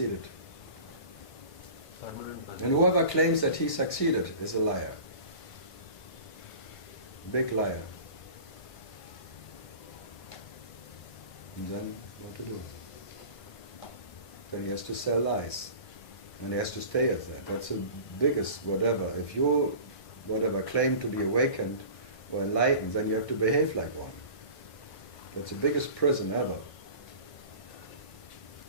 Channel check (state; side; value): late; right; 1.5 ms